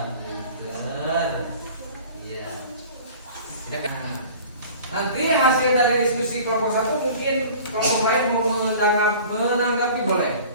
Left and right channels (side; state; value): both; inverted; correlation -0.44